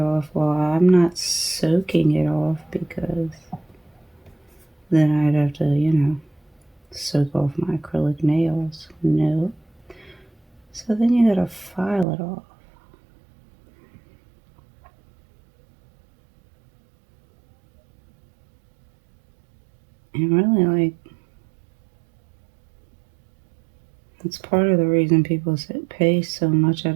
Well, I'm not soaking it off because then I'd have to, soak off my acrylic nails. No. So then you gotta file it off. And really, like, that's part of the reason people pay so much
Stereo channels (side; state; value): left; drops out; at 12.1 s